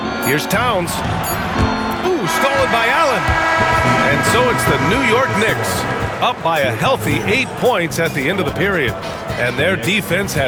Here's Towns. Ooh, stolen by Allen. And so it's the New York Knicks up by a healthy 8 points at the end of the period. And their defense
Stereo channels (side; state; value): both; identical; correlation 1.00